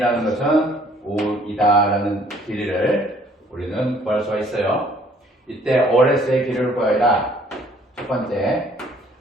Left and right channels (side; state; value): both; normal; correlation 0.60